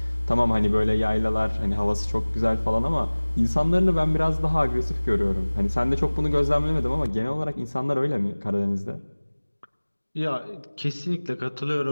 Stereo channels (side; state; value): both; inverted; correlation -1.00